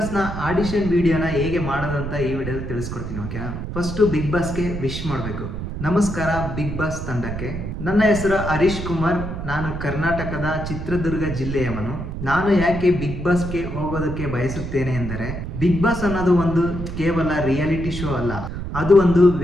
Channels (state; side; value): noise; right; rumble, 6 dB below the sound